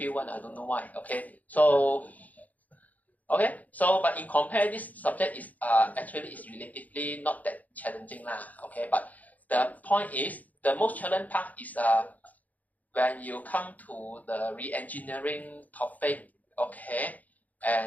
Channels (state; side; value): late; right; 0.078 ms